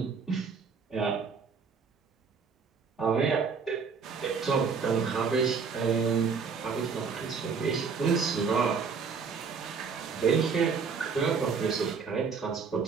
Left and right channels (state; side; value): quieter; left; 5.5 dB